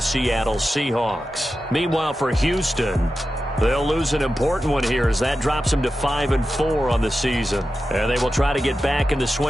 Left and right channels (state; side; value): normal; both; correlation 0.92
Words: Seattle Seahawks. Meanwhile, for Houston, they'll lose an important one here as that drops them to 5-4 on the season. And they will try to get back in the